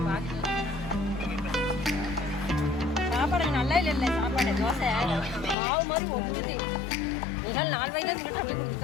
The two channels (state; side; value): drops out; right; at 5.6 s